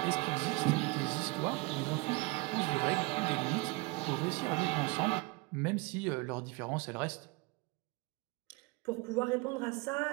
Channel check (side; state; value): left; quieter; 25.2 dB